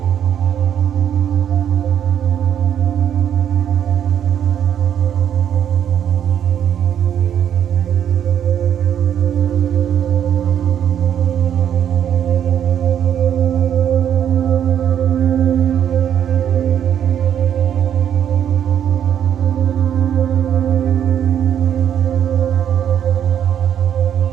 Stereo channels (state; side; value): quieter; left; 9.4 dB